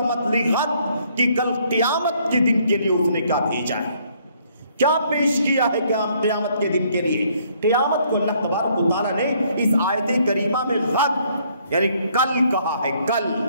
لغد، کہ کل قیامت کے دن کے لیے اس نے کیا بھیجا ہے، کیا پیش کیا ہے قیامت کے دن کے لیے۔ قیامت کو اللہ تبارک و تعالیٰ نے اس آیت کریمہ میں غد یعنی کل کہا ہے، کل،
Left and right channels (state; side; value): inverted; both; correlation -0.66